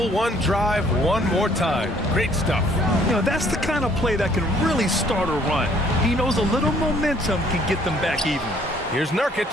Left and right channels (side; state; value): both; normal; correlation 0.61